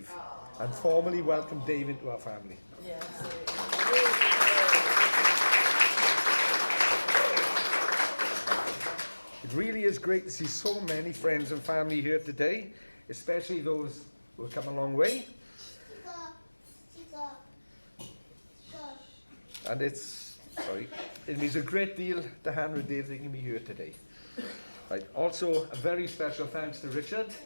and formally welcome Dave into our family. It really is great to see so many friends and family here today, especially those who have come a long way. And it means a great deal to Hannah and Dave that you can be here today. Right. Also, a very special thanks to Richard,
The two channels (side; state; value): both; inverted; correlation -1.00